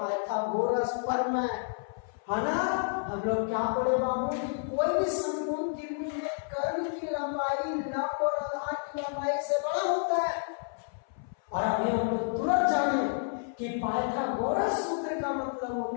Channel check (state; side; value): silent; right; 58 dB below the other